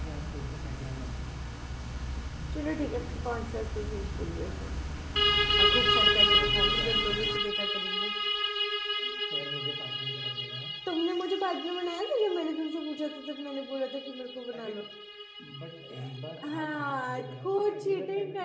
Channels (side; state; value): both; identical; correlation 1.00